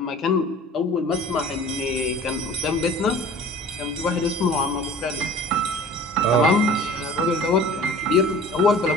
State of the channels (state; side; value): normal; both; correlation 0.44